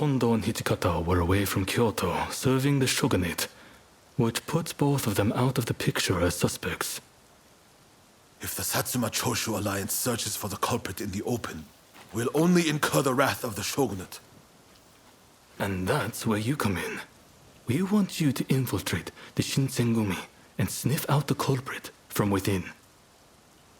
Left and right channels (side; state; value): both; identical; correlation 1.00